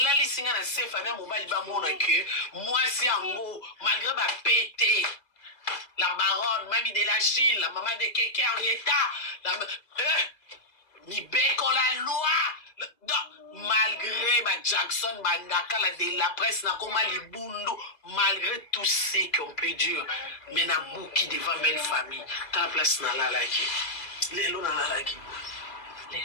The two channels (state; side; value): late; right; 2.0 ms